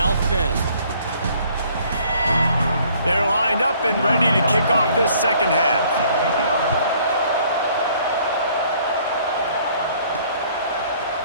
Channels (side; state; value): both; inverted; correlation -0.60